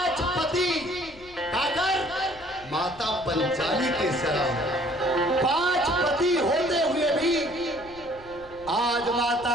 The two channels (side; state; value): left; noise; rumble, 21 dB below the sound